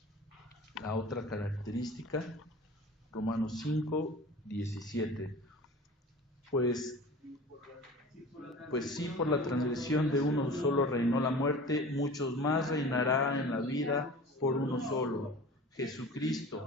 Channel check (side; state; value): both; normal; correlation 0.39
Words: la otra característica. Romanos 5:17. Pues sí, por la transgresión de uno solo reinó la muerte, muchos más reinará en la vida por uno solo,